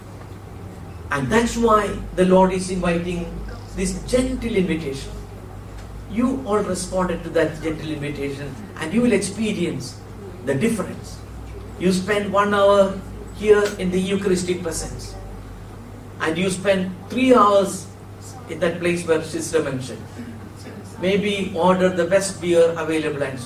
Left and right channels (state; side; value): identical; both; correlation 1.00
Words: And that's why the Lord is inviting this gentle invitation. You all responded to that gentle invitation and you will experience the difference. You spend 1 hour here in the Eucharistic presence and you spend 3 hours in that place where Sister mentioned. Maybe order the best beer available and